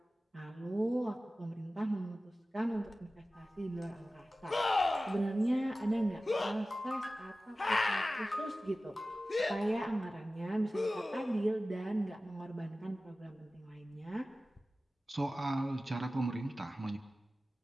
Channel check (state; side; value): normal; both; correlation 0.96